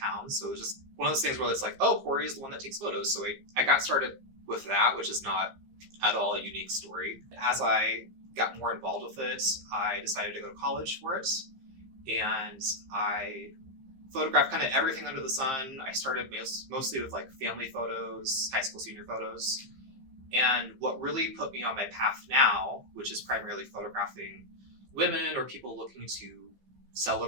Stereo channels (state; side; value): late; left; 15 ms